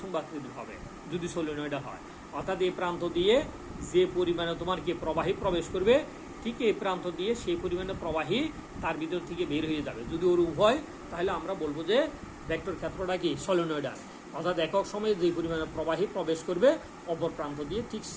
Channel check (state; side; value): identical; both; correlation 1.00